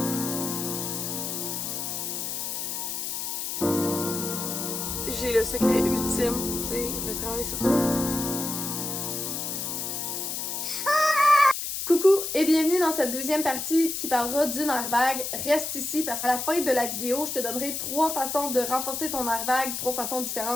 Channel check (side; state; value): left; noise; hiss, 3 dB below the sound